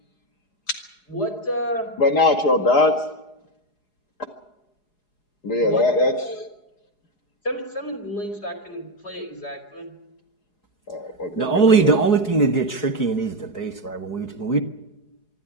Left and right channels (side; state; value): right; late; 4.8 ms